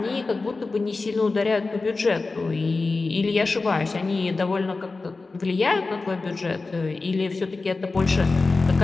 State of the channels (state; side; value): quieter; right; 3.7 dB